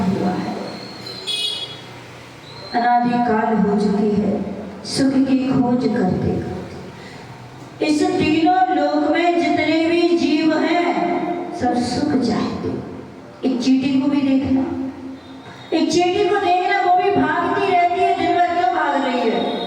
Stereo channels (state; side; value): identical; both; correlation 1.00